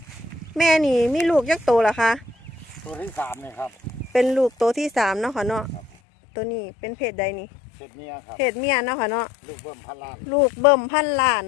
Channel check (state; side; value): drops out; right; at 5.9 s